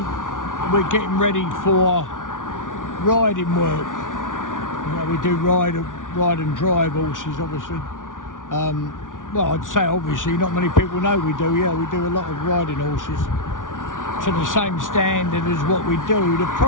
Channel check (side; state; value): right; late; 0.88 ms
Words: we're getting ready for riding work. You know, we do ride and drive horses, obviously. Well, I'd say obviously, not many people know we do. Yeah, we do a lot of riding horses to the same standard as what we do. The